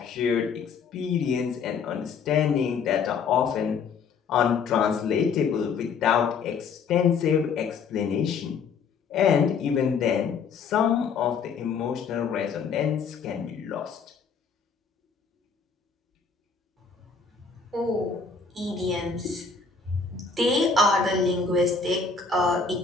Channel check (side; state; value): right; quieter; 5.5 dB